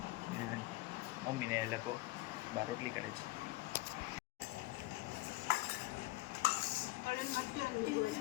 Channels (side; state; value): right; quieter; 20.3 dB